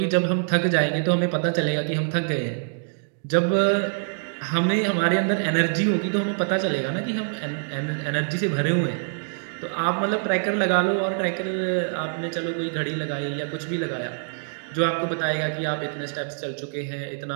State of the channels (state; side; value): silent; left; digital silence